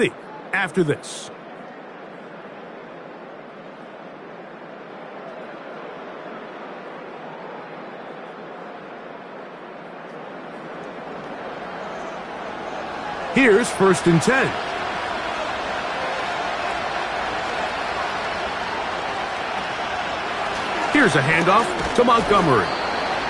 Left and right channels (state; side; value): identical; both; correlation 1.00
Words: after this. Here's 1st and 10. Here's a handoff to Montgomery.